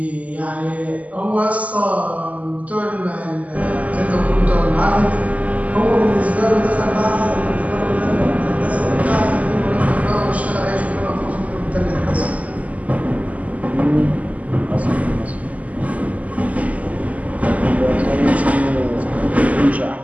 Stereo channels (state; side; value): late; left; 0.072 ms